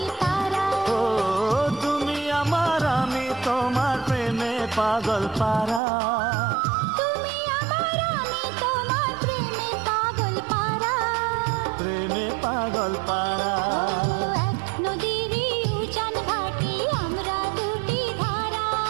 তারা। ও তুমি আমার আমি তোমার প্রেমে পাগল পারা, তুমি আমার আমি তোমার প্রেমে পাগল পারা, প্রেমে পাগল পারা। এক নদীরই উজান ভাটি আমরা দুটি ধারা,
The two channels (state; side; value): drops out; left; at 5.8 s